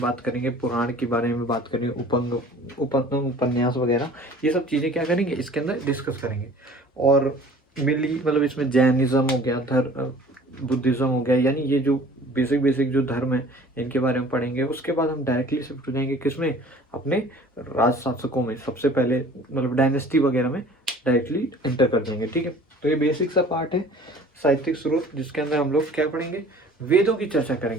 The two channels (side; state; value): both; normal; correlation 0.48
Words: बात करेंगे, पुराण के बारे में बात करेंगे, उपन्यास वगैरह, ये सब चीज़ें क्या करेंगे इसके अंदर डिस्कस करेंगे। और मेनली मतलब इसमें जैनिज्म हो गया, बुद्धिज़्म हो गया, यानी ये जो बेसिक जो धर्म है इनके बारे में पढ़ेंगे। उसके बाद हम डायरेक्टली शिफ्ट हो जाएंगे किसमें? अपने राज शासकों में, सबसे पहले मतलब डायनेस्टी वगैरह में डायरेक्टली एंटर कर जाएंगे, ठीक है। तो ये बेसिक सा पार्ट है साहित्यिक स्रोत, जिसके अंदर हम लोग क्या पढ़ेंगे? वेदों की चर्चा